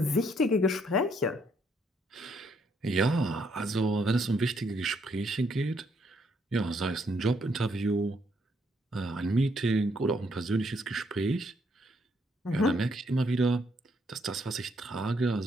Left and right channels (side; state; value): both; normal; correlation 0.72